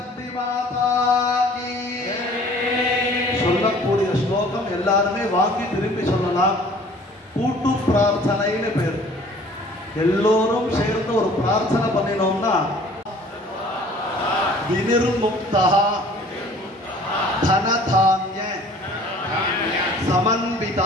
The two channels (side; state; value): both; normal; correlation 0.51